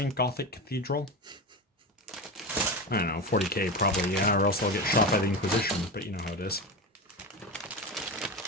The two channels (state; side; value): normal; both; correlation 0.22